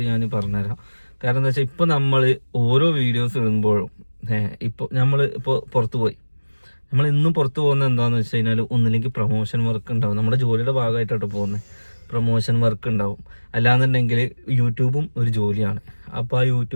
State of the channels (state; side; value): inverted; both; correlation -1.00